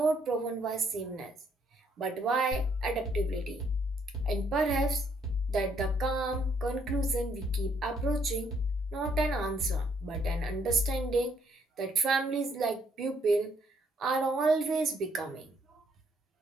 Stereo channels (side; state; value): both; normal; correlation 0.69